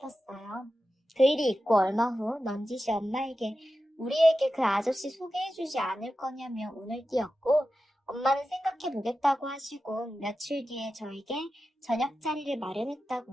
그 일이 있고 얼마 후 넌지시 엄마에게 우리에게 그 아저씨 소개해주지 않을 거냐며 운을 띄웠고 엄마는 생각해보겠다고 하시고 며칠 뒤에 저에게 저녁 자리를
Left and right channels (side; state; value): both; normal; correlation 0.92